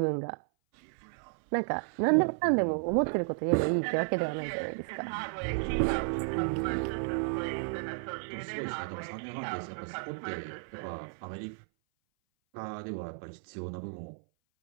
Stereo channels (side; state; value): left; silent; 56 dB below the other